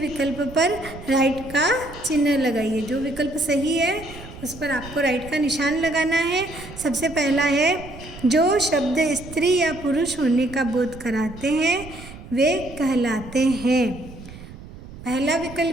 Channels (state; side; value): noise; right; rumble, 15 dB below the sound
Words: पर राइट का चिन्ह लगाइए। जो विकल्प सही है उस पर आपको राइट का निशान लगाना है। सबसे पहला है जो शब्द स्त्री या पुरुष होने का बोध कराते हैं वे कहलाते हैं। पहला